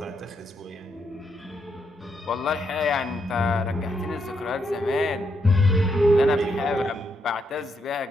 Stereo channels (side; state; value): both; normal; correlation 0.79